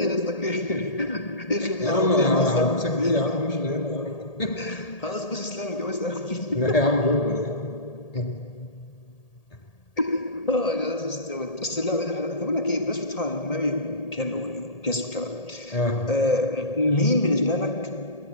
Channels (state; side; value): late; right; 1.8 ms